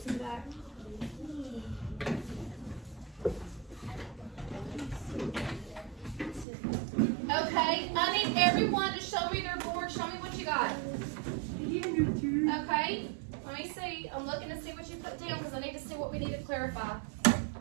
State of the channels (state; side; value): drops out; left; at 6.5 s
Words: in the back. Okay, I need everyone to show me their board. Show me what you got. Okay, let me see. I'm looking to see what you put down because I need to see what we need to clarify.